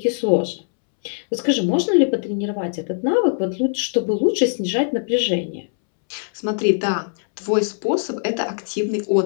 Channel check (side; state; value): right; silent; 65 dB below the other